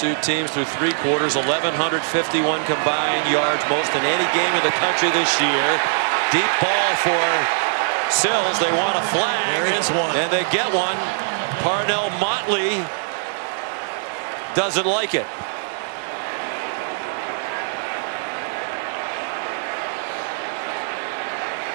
teams through 3 quarters, 1,151 combined yards, most in any game in the country this year. Deep ball for Sills. They want a flag. There is one. And they get one. Parnell Motley doesn't like it.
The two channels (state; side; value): silent; left; 64 dB below the other